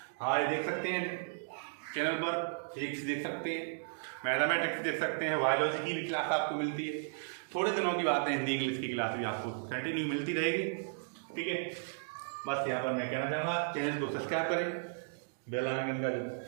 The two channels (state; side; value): silent; left; digital silence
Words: हमारे देख सकते हैं चैनल पर, फिजिक्स देख सकते हैं, मैथमेटिक्स देख सकते हैं, बायोलॉजी की भी क्लास आपको मिलती है। थोड़े दिनों की बात है, हिंदी इंग्लिश की क्लास भी आपको कंटिन्यू मिलती रहेगी, ठीक है। बस यहाँ पर मैं कहना चाहूँगा चैनल को सब्सक्राइब करें, बेल आइकन का